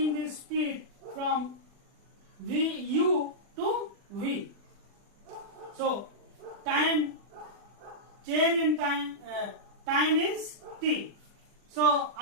the speed from U to V. So time change in time time is T. So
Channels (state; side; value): late; left; 40 ms